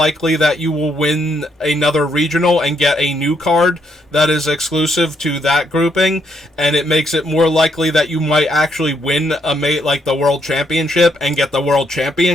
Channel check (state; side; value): normal; both; correlation 0.74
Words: that you will win another regional and get a new card that is exclusive to that grouping. And it makes it more likely that you might actually win like the World Championship and get the World